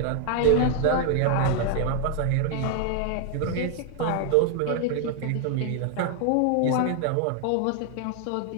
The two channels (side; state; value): both; different; correlation 0.00